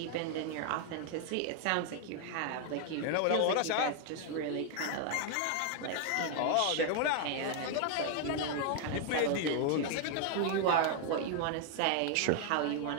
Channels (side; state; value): both; different; correlation 0.00